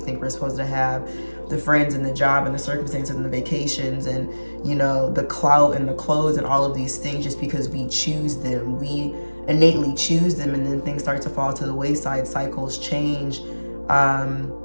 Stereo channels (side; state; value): both; inverted; correlation -1.00